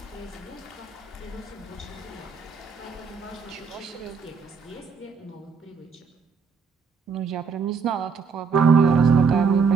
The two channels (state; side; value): quieter; left; 5.5 dB